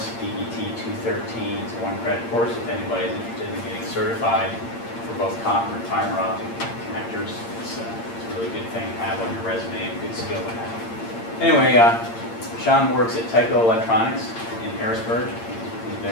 DET 213. It's a 1-credit course. If anybody is interested in getting certified for both copper and fiber optic connectors, it's a really good thing to have on your resume and a good skill to have. Anyway, Sean works at Tyco Electronics in Harrisburg. He's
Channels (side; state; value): right; late; 8.7 ms